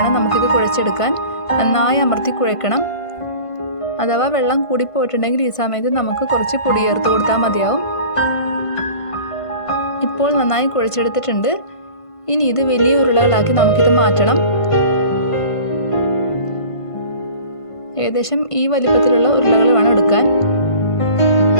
നമുക്കിത് കുഴച്ചെടുക്കാൻ. നന്നായി അമർത്തി കുഴക്കണം. അഥവാ വെള്ളം കൂടിപ്പോയിട്ടുണ്ടെങ്കിൽ ഈ സമയത്ത് നമുക്ക് കുറച്ച് പൊടി ചേർത്ത് കൊടുത്താൽ മതിയാവും. ഇപ്പോൾ നന്നായി കുഴച്ചെടുത്തിട്ടുണ്ട്. ഇനി ഇത് വലിയ ഉരുളകളാക്കി നമുക്കിത് മാറ്റണം. ഏകദേശം ഈ വലിപ്പത്തിലുള്ള ഉരുളകൾ വേണം എടുക്കാൻ.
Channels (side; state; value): right; late; 1.5 ms